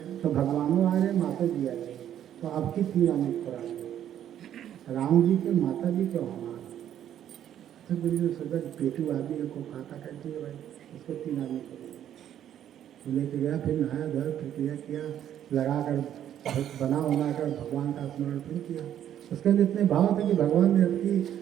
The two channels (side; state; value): left; quieter; 10.6 dB